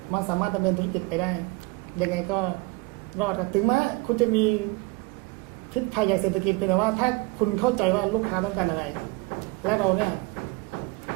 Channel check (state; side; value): quieter; left; 24.4 dB